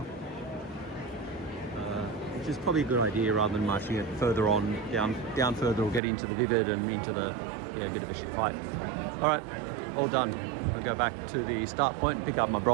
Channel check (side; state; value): left; drops out; at 6.0 s